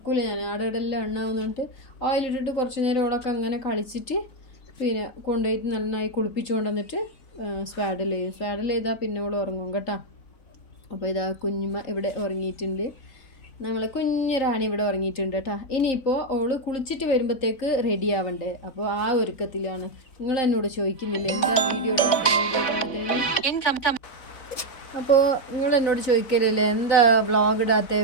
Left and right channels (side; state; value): right; late; 4.0 ms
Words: ഞാൻ, ആടെല്ലാം എണ്ണാവുന്നിട്ട് ഓയിലിട്ടിട്ട് കുറച്ച് നേരം ഓളൊക്കെ അങ്ങനെ കളിച്ചിട്ട് പിന്നെ കൊണ്ടുപോയിട്ട് നന്നായി കുളിപ്പിച്ചുകൊണ്ട് വന്നിട്ട് സ്വാഡൽ ചെയ്താൽ പിന്നെ ഓൾ ഉറങ്ങും കേട്ടോ. അപ്പോൾ ഇതാ കുഞ്ഞുമ്മ ഇവിടെ ഉറങ്ങിയിട്ടുണ്ട്, നമ്മളെ കുഞ്ഞൊരാണി ഇവിടെ ഉറങ്ങിയിട്ടുണ്ട് കേട്ടോ. ഇനിയിപ്പോൾ ഓള് കുളിച്ചിട്ട് വരുമ്പോഴത്തേക്ക് റെഡി ആവണ്ടേ, അപ്പോൾ ആ ഒരുക്കത്തിലാണ്. നിങ്ങൾ എന്നോട് ചോദിക്കുന്നില്ല എന്താ വീഡിയോ അപ്പോൾ നിങ്ങൾ എന്നോട് ചോദിക്കലില്ലേ എന്താ വ്ളോഗ് ഇടാത്ത,